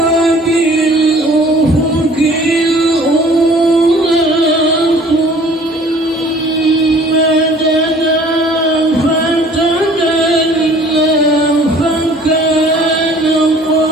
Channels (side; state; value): both; normal; correlation 0.52